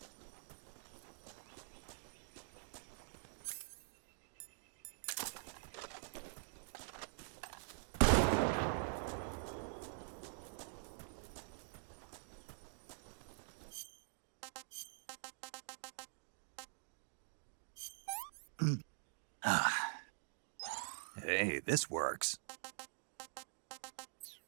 Hey, this works.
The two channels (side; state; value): left; silent; digital silence